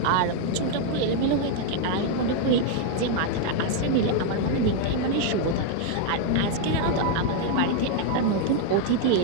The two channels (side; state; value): both; different; correlation 0.00